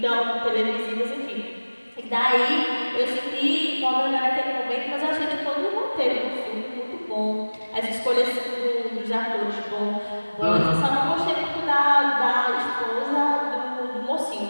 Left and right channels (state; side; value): inverted; both; correlation -1.00